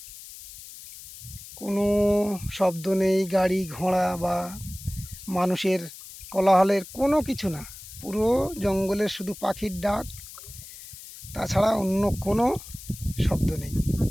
কোনো শব্দ নেই, গাড়ি ঘোড়া বা মানুষের কোলাহলের কোনো কিছু না। পুরো জঙ্গলের শুধু পাখির ডাক, তাছাড়া অন্য কোনো শব্দ নেই।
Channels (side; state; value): left; noise; hiss, 15 dB below the sound